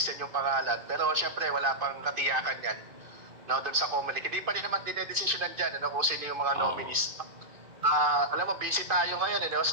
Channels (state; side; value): late; left; 2.5 ms